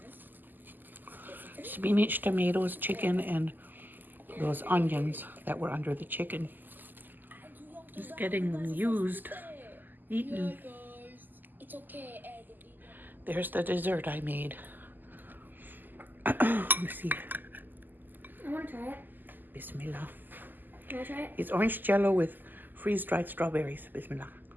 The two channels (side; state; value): left; late; 0.088 ms